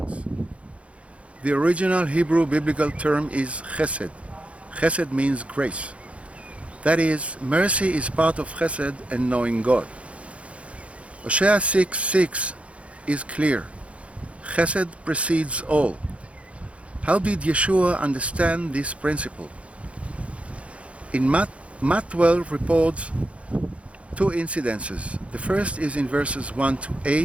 The original Hebrew biblical term is chesed. Chesed means grace. That is, mercy is part of chesed and knowing God. Hosea 6:6 is clear. Chesed precedes all. How did Yeshua understand this principle? In Matt 12 reports two incidences. The first is in verses 1 to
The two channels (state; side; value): late; left; 0.062 ms